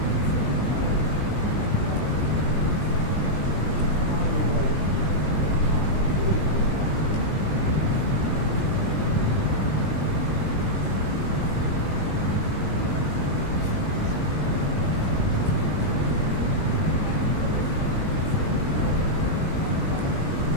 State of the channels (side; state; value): right; late; 20 ms